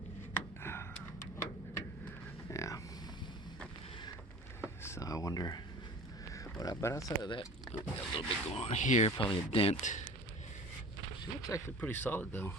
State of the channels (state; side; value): normal; both; correlation 0.41